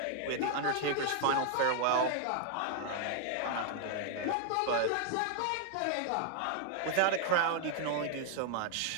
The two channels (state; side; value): different; both; correlation 0.00